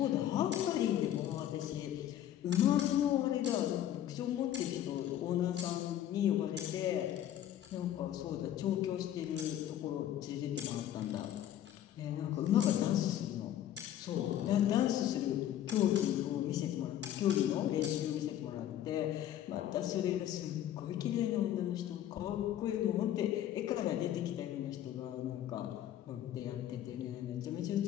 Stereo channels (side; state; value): right; quieter; 11.6 dB